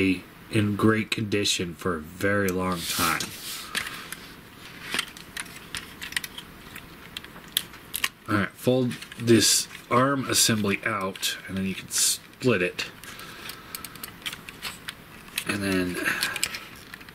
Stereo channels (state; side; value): identical; both; correlation 1.00